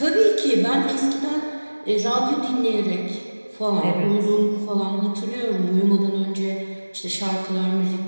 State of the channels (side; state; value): both; inverted; correlation -1.00